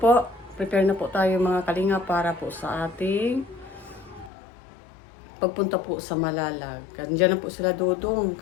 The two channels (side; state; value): right; drops out; at 4.3 s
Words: prepare na po tayo mga kalingap para po sa ating pagpunta po sa Malalag. Diyan na po sila Dudong.